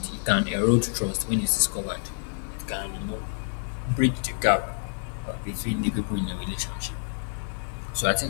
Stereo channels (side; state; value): right; silent; digital silence